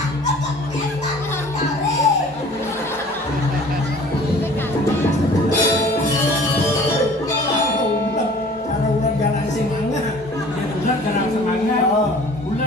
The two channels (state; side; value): normal; both; correlation 0.48